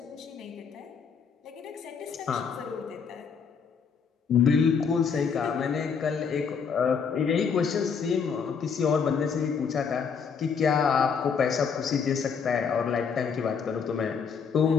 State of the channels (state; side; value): quieter; right; 6.2 dB